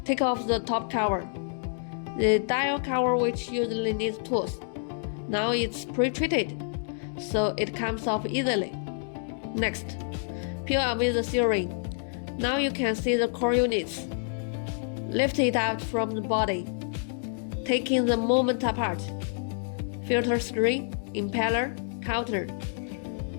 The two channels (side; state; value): right; silent; digital silence